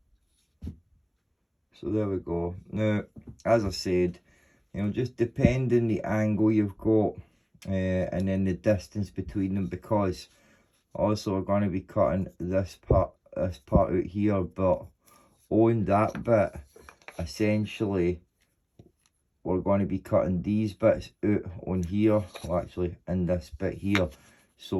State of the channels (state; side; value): identical; both; correlation 1.00